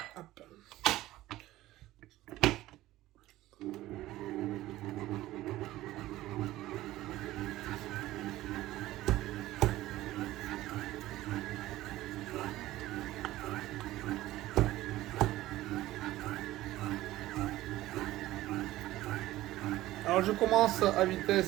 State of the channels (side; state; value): left; quieter; 16.0 dB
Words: Hop. Alors, je commence à